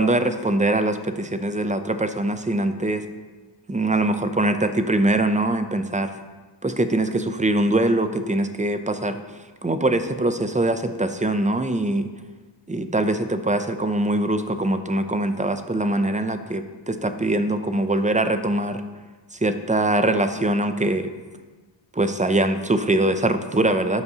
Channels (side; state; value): both; normal; correlation 0.51